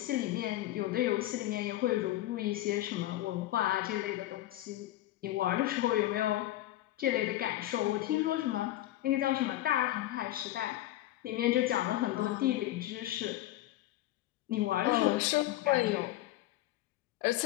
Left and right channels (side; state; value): right; quieter; 15.2 dB